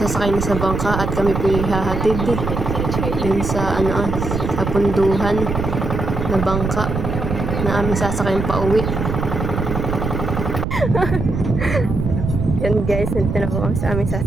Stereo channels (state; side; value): noise; right; rumble, 3 dB below the sound